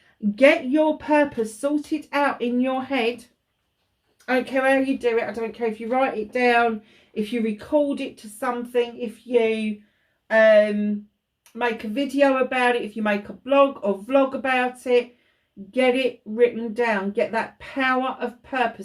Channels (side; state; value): both; identical; correlation 1.00